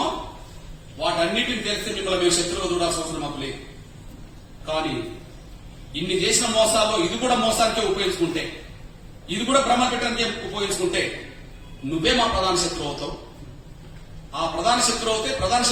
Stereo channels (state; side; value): identical; both; correlation 1.00